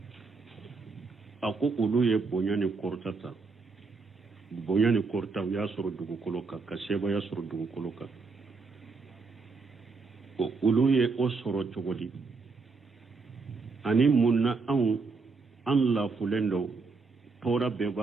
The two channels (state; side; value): quieter; left; 4.4 dB